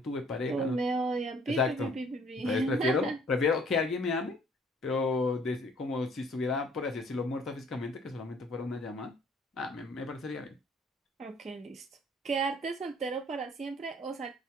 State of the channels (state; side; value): normal; both; correlation 0.58